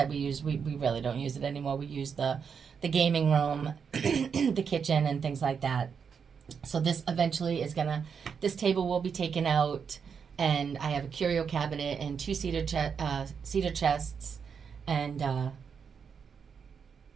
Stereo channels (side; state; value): left; quieter; 6.5 dB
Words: use, we really don't use it anymore. We use the gaming room, the kitchen, and things like that. So this eventually this table will be taken out, and I have a curio cabinet and two cedar chests, and